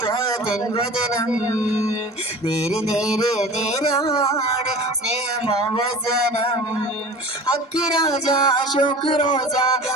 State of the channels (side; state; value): both; normal; correlation 0.39